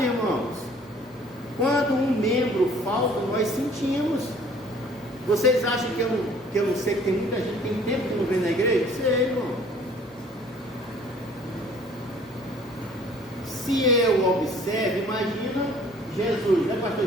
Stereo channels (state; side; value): normal; both; correlation 0.54